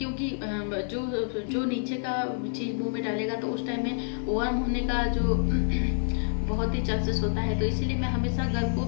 जो नीचे का चीज़ मुंह में डालेगा तो उस टाइम में वर्म होने का जो बहुत ही चांसेस होता है। तो इसीलिए मैं हमेशा घर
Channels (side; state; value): right; silent; digital silence